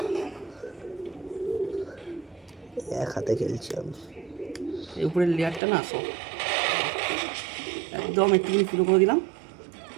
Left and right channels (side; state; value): left; drops out; at 5.6 s